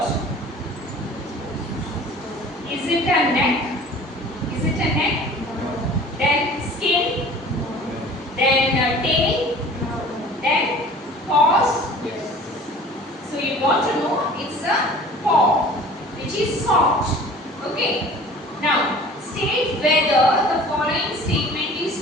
Is it a neck? Is it a neck? Then skin? Then tail? Then paws? So you want to know it's a paw, which is soft. Okay. Now, state whether the following statement is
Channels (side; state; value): both; normal; correlation 0.45